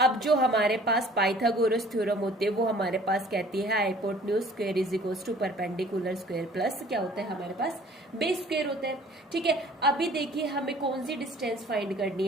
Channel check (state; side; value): normal; both; correlation 0.52